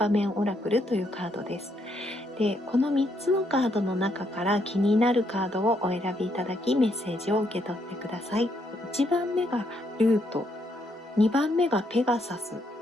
面オラクルというカードです。で、この3つのカードの中から気になるカードをお選びいただき、メッセージを受け取ってください。1番目がルート、2番目がペガサス、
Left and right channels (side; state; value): both; normal; correlation 0.75